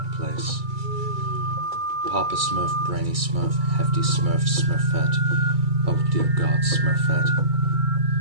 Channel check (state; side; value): late; left; 2.3 ms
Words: place. Papa Smurf, Brainy Smurf, Hefty Smurf, Smurfette, oh dear God, Smurfette.